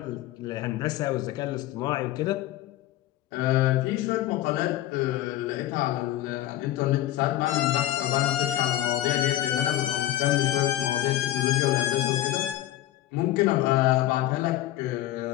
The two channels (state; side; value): quieter; right; 14.0 dB